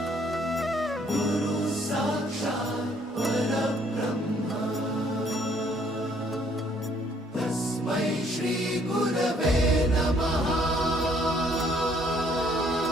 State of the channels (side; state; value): both; normal; correlation 0.64